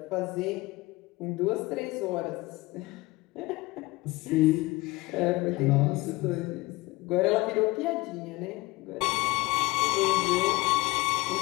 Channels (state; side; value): quieter; right; 21.4 dB